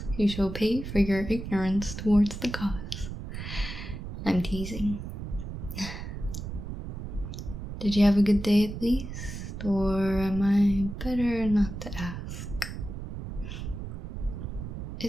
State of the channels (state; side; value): noise; right; rumble, 7 dB below the sound